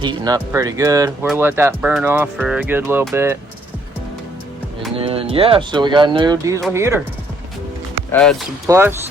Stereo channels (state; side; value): normal; both; correlation 0.66